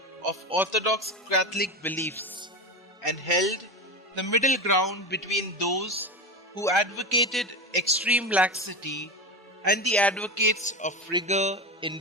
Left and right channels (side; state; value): both; normal; correlation 0.20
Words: of Orthodox Catholic beliefs and held the middle ground between those who advocated extreme laxity and the advocates of rigor in